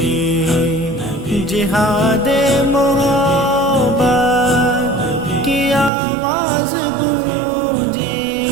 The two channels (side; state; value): left; drops out; at 5.9 s